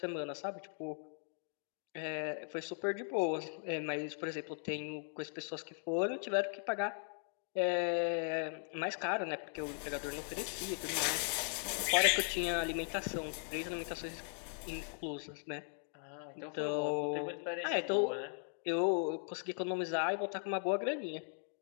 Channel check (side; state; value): right; silent; 52 dB below the other